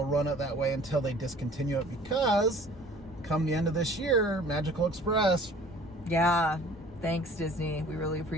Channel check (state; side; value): normal; both; correlation 0.50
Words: run it that way until they discontinue it, because come the end of this year, Magical Express. Yeah. Thanks, Disney. We really